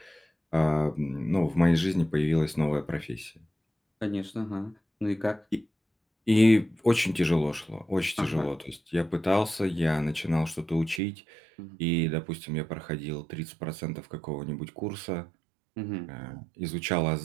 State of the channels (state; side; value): drops out; left; at 11.0 s